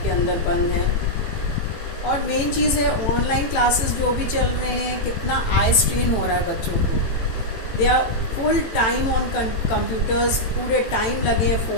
के अंदर बंद हैं. और मेन चीज़ है ऑनलाइन क्लासेस जो भी चल रहे हैं, कितना आई स्ट्रेन हो रहा है बच्चों को. They are full time on computers, पूरे टाइम लगे हैं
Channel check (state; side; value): late; right; 18 ms